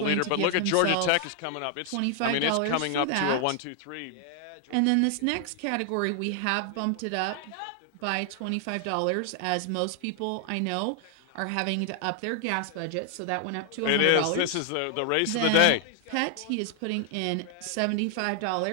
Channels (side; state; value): both; different; correlation 0.00